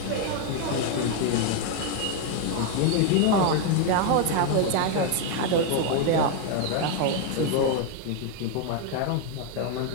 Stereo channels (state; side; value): different; both; correlation 0.01